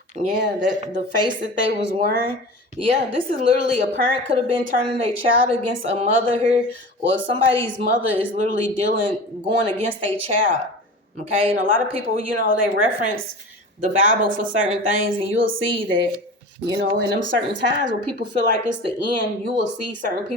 Yeah, that the face that they was wearing. Yeah, this is literally a parent could have been turning their child against a mother here, or somebody's mother is literally going against their child. Okay, and a lot of people, they reference the Bible for certain things, and you'll see that, in them certain times where people feel like it's the end, you will see certain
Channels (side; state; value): both; normal; correlation 0.35